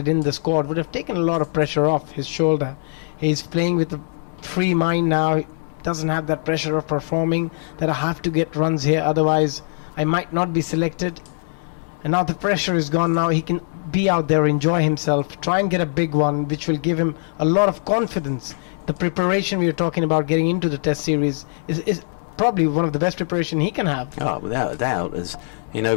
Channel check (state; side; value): silent; right; digital silence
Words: in the squad would have taken a lot of pressure off his shoulder. He's playing with a free mind now. He doesn't have that pressure of performing, that I have to get runs here, otherwise I might not be selected. And now the pressure is gone. Now he can be out there, enjoy himself, try and get a big one, which will give him a lot of confidence. The preparation we are talking about getting into the test series is probably one of the best preparation he can have. Oh, without a doubt. As in